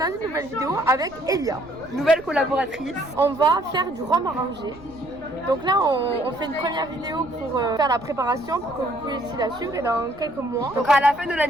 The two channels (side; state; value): right; noise; rumble, 22 dB below the sound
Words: une nouvelle vidéo avec Elia, nouvelle collaboratrice. On va faire du rhum arrangé. Donc là on fait une première vidéo pour faire la préparation pour que vous puissiez la suivre et dans quelques mois. Donc à la fin de